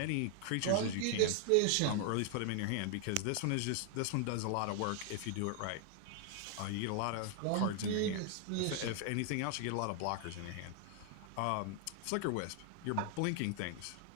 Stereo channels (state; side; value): different; both; correlation 0.00